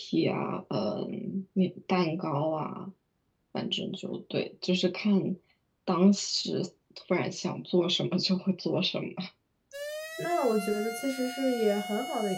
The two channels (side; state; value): both; identical; correlation 1.00